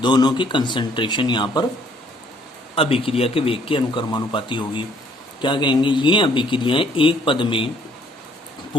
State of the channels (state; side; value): normal; both; correlation 0.63